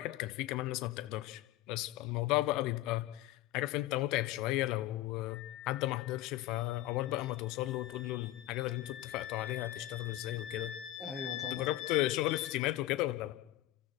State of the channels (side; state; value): right; quieter; 15.6 dB